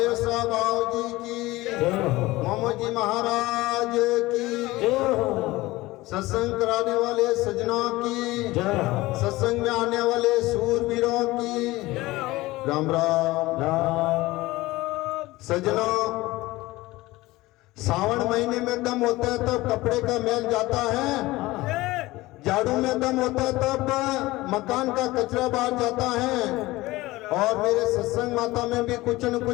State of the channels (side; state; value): right; quieter; 19.3 dB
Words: साहब जी की मोहम्मद जी महाराज की सत्संग कराने वाले सजना की सत्संग में आने वाले सूरवीरों की राम राम सजना। सावन महीने में दम होता है तब कपड़े का मैल जाता है, झाड़ू में दम होता है तब मकान का कचरा बाहर जाता है। और मेरे सत्संग माता में भी कुछ न